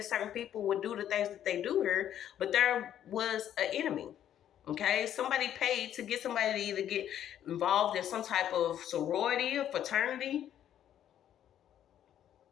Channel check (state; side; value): quieter; right; 10.6 dB